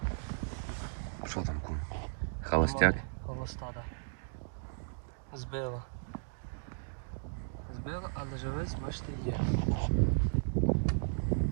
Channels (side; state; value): left; silent; digital silence